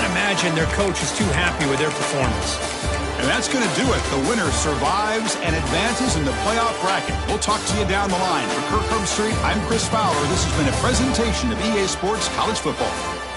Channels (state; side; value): identical; both; correlation 1.00